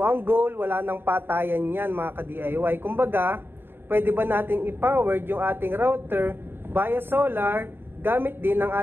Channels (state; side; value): late; left; 0.10 ms